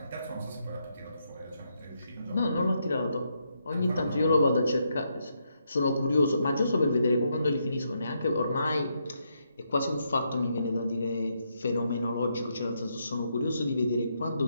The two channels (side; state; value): both; inverted; correlation -0.79